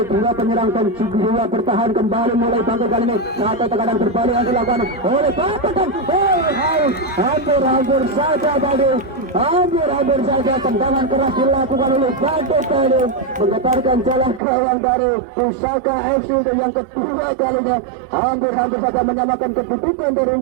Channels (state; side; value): drops out; left; at 14.4 s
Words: dua penyerang dan jiwa bertahan kembali mulai bangkit kali ini. Satu tekanan berbalik yang dilakukan oleh Bapak dan hampir saja tadi, hampir saja tendangan keras dilakukan oleh Bapak tadi, menggetarkan jalan gawang dari Pusaka FC yang kedua kalinya. Hampir saja menyamakan kedudukan dari